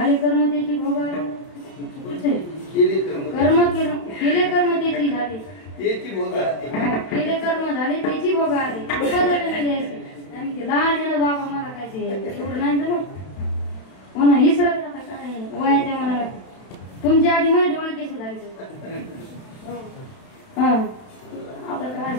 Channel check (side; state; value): right; late; 31 ms